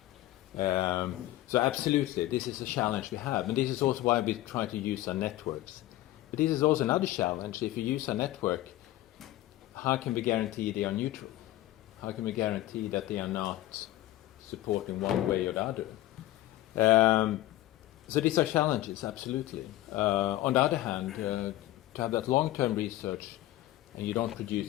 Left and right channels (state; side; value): quieter; right; 15.6 dB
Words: So absolutely, this is a challenge we have. And this is also why we try to use our networks. But this is also another challenge. If you use a network, how can we guarantee they are neutral? How can we guarantee that they are not supporting one way or the other? So these are challenges, absolutely. On the other hand, to have that long-term research and you don't